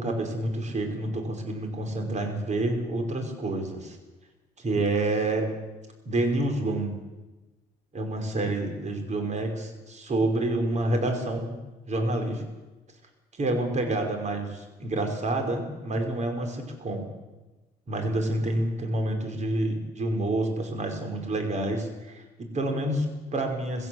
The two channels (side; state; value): both; normal; correlation 0.61